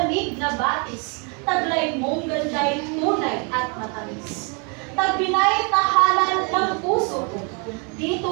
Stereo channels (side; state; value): left; quieter; 35.0 dB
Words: na batis, taglay mong ganday, tunay at matamis. Tagbinay tahanan ng puso ko,